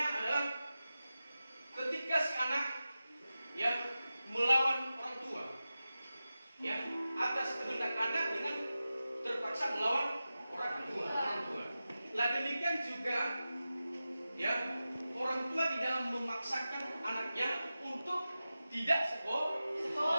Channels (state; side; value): inverted; both; correlation -0.94